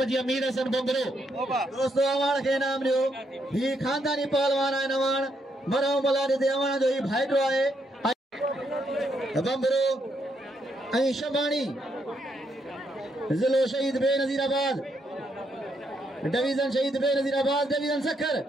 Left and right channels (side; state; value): both; normal; correlation 0.77